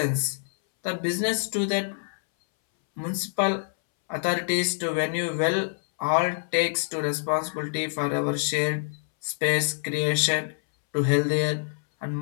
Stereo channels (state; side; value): silent; right; 61 dB below the other